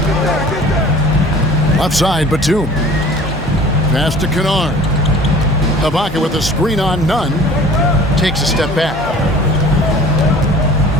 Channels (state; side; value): normal; both; correlation 0.46